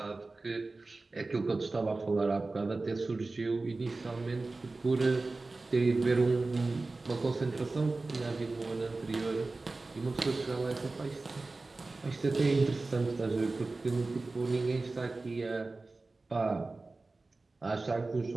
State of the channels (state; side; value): quieter; left; 3.4 dB